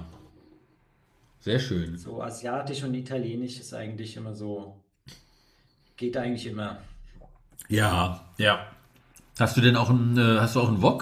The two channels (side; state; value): both; identical; correlation 1.00